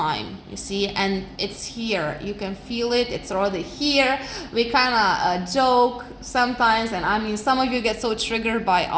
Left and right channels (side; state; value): both; identical; correlation 1.00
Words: you see, and it's here. You can feel it. It's already here. We kind of joke sometimes, and I mean, some of you get so triggered by